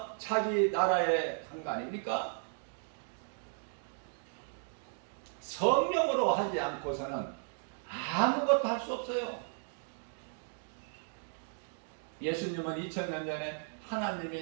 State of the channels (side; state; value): left; silent; 54 dB below the other